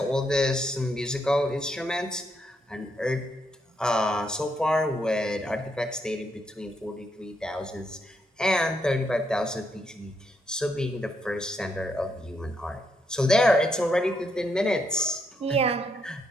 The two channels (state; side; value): normal; both; correlation 0.78